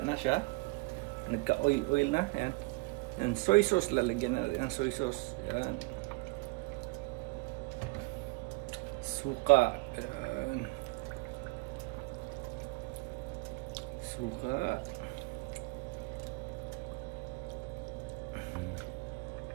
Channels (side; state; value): left; quieter; 26.6 dB